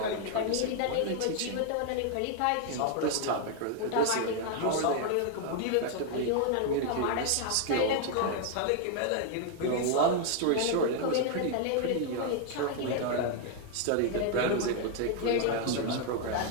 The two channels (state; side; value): different; both; correlation 0.00